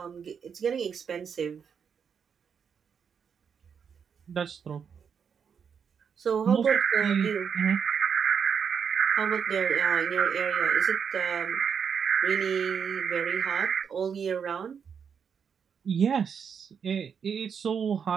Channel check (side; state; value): left; quieter; 6.9 dB